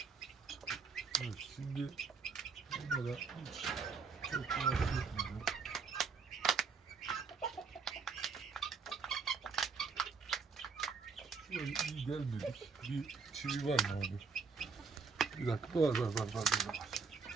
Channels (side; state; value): left; quieter; 5.1 dB